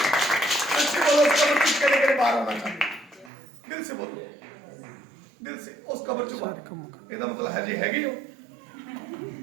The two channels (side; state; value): left; drops out; at 3.3 s